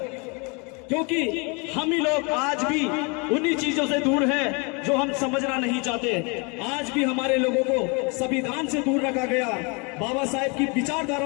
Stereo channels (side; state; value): right; quieter; 31.3 dB